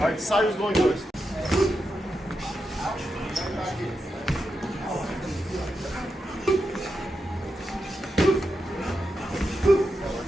right, side is going first.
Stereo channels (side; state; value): both; normal; correlation 0.87